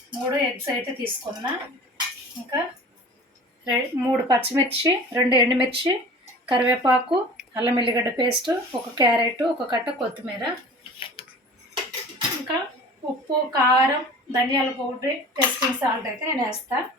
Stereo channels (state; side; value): normal; both; correlation 0.41